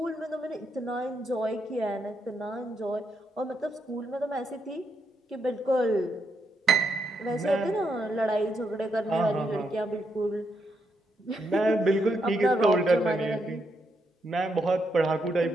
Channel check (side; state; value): both; normal; correlation 0.79